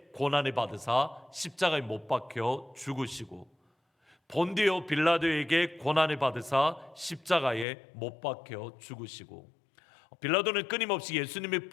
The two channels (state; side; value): drops out; right; at 7.7 s